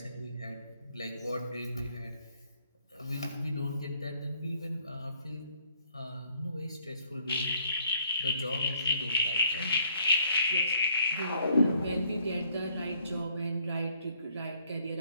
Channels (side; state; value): both; inverted; correlation -0.66